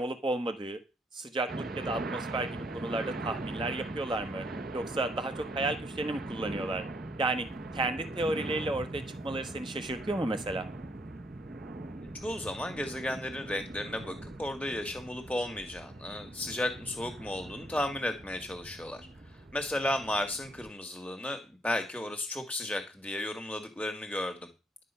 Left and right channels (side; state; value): both; normal; correlation 0.70